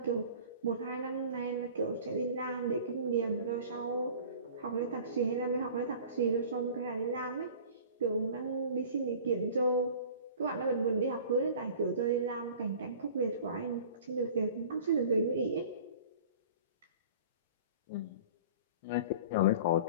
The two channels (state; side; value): inverted; both; correlation -0.43